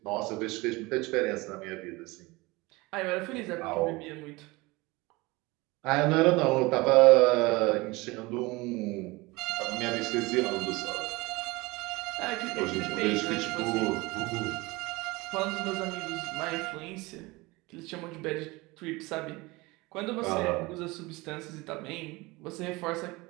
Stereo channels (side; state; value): left; quieter; 22.9 dB